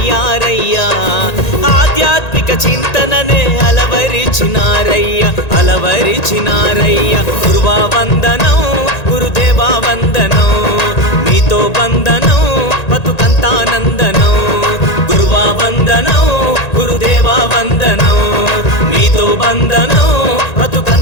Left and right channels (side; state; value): right; late; 1.9 ms